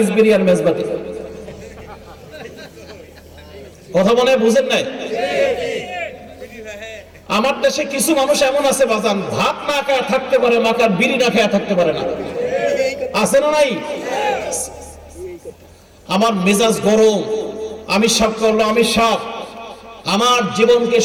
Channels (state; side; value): identical; both; correlation 1.00